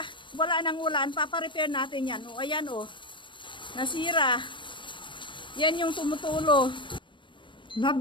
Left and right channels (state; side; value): late; right; 0.24 ms